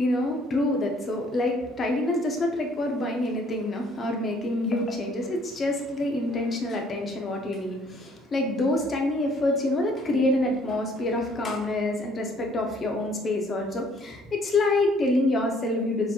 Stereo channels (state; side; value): normal; both; correlation 0.61